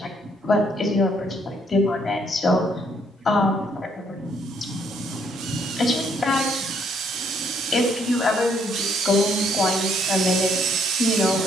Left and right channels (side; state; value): both; normal; correlation 0.69